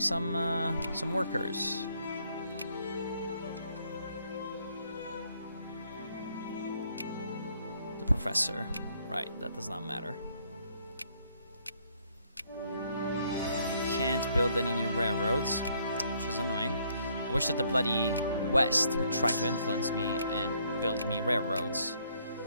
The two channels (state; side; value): inverted; both; correlation -0.68